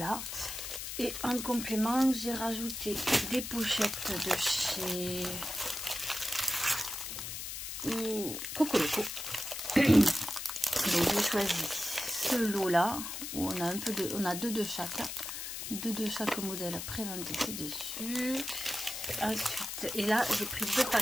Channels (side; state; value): left; noise; hiss, 6 dB below the sound